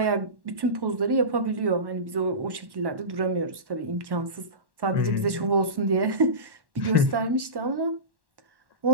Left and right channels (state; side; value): late; left; 1.1 ms